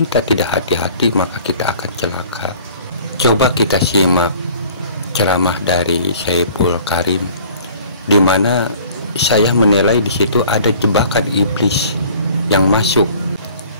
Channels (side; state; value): both; inverted; correlation -0.50